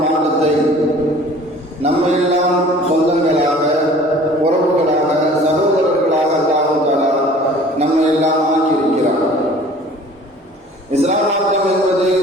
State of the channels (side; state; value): both; normal; correlation 0.48